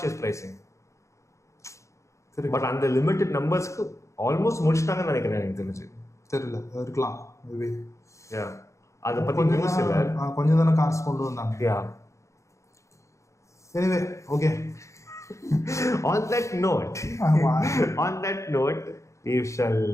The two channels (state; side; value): late; right; 0.15 ms